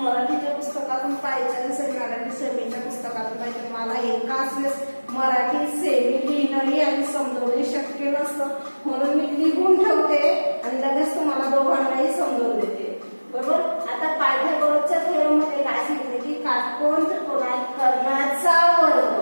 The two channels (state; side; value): inverted; both; correlation -1.00